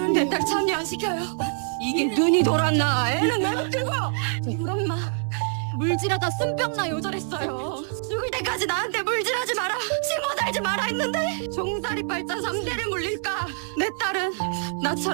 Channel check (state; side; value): silent; left; digital silence